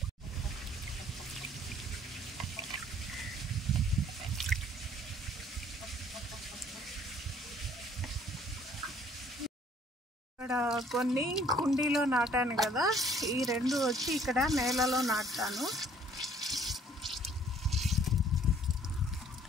ఇక్కడ కొన్ని కుండీలో నాటాను కదా, ఈ రెండు వచ్చి ఇక్కడ నేలలో నాటుతాను.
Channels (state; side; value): normal; both; correlation 0.58